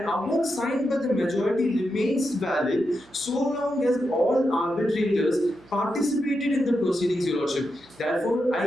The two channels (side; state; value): right; noise; hum, 27 dB below the sound